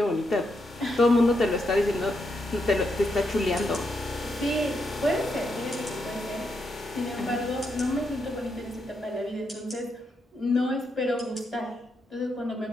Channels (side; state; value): both; normal; correlation 0.81